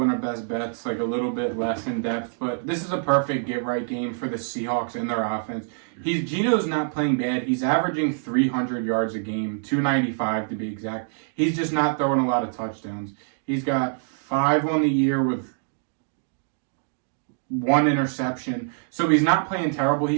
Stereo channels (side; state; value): left; silent; digital silence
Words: in our best bets, like a little bit less in depth. But this is a perfect get-right game for the Seahawks and their offense. Geno's not playing bad. He's averaging 300 yards a game, 295 to be exact. He's just not throwing a lot of touchdowns. He's got 5 on the year with 1 interception. So he's not playing terrible.